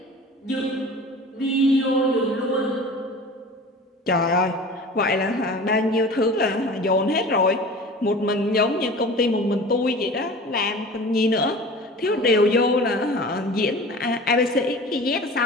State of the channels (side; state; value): both; normal; correlation 0.39